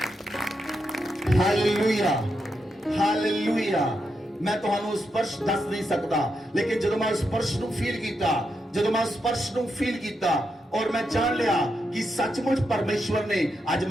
Hallelujah, hallelujah. ਮੈਂ ਤੁਹਾਨੂੰ ਸਪਰਸ਼ ਦੱਸ ਨਹੀਂ ਸਕਦਾ, ਲੇਕਿਨ ਜਦੋਂ ਮੈਂ ਸਪਰਸ਼ ਨੂੰ ਫੀਲ ਕੀਤਾ, ਜਦੋਂ ਮੈਂ ਸਪਰਸ਼ ਨੂੰ ਫੀਲ ਕੀਤਾ ਔਰ ਮੈਂ ਜਾਣ ਲਿਆ ਕਿ ਸੱਚਮੁੱਚ ਪਰਮੇਸ਼ਵਰ ਨੇ ਅੱਜ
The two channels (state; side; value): normal; both; correlation 0.84